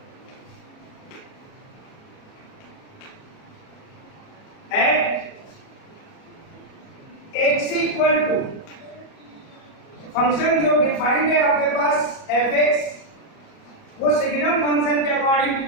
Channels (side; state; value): right; late; 37 ms